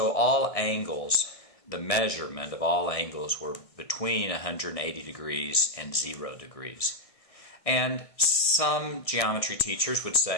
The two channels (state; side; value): late; right; 1.7 ms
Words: all angles, the measurement of all angles were between 180 degrees and 0 degrees. And some geometry teachers would